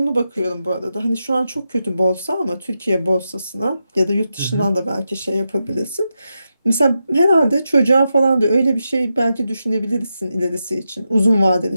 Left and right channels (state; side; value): inverted; both; correlation -0.88